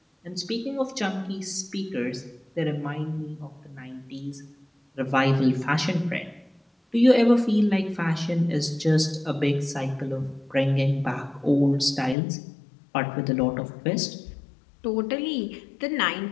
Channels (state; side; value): drops out; right; at 12.2 s